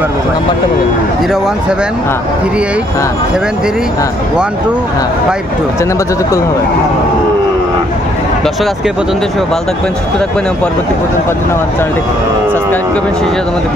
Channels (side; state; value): both; normal; correlation 0.67